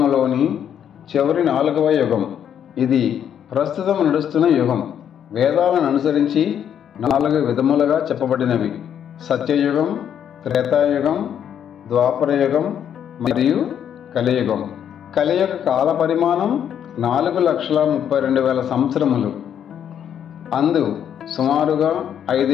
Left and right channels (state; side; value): quieter; right; 9.1 dB